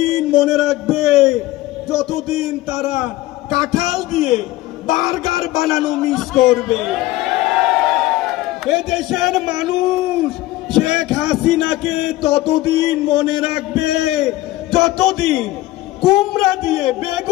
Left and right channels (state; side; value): quieter; right; 17.1 dB